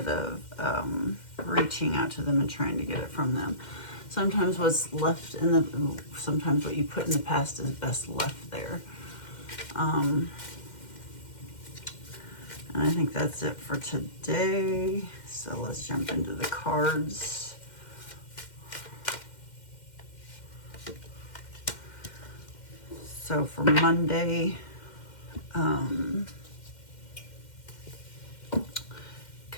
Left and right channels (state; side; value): late; right; 2.1 ms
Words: of reaching out to them and trying to get it from them. Sometimes what's left sometimes what you put in the past is best left there. And I think that's it for today. So let's jump into the cards. So for Monday,